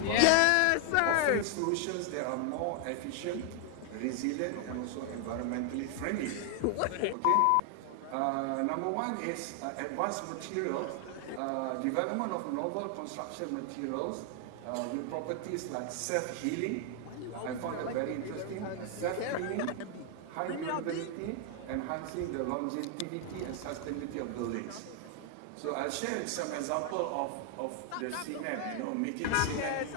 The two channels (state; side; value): different; both; correlation 0.00